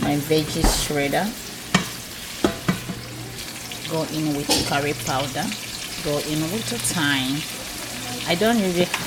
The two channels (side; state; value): both; identical; correlation 1.00